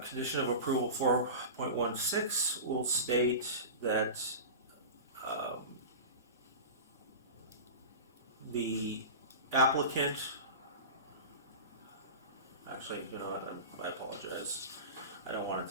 of approval 4.16 will state that the applicant, actually, you know what, I apologize. I don't want it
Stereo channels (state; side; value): inverted; both; correlation -0.30